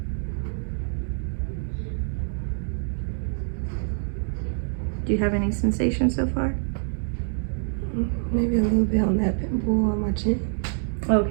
Do you have any sensation so far? Maybe a little bit on that pimple on my chin.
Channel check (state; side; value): silent; left; digital silence